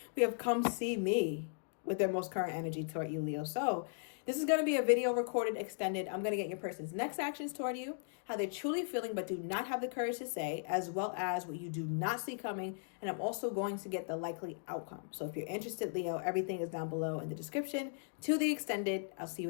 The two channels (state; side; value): silent; right; digital silence